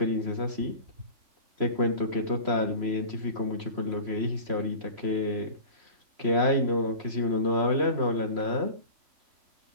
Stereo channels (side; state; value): left; late; 3.0 ms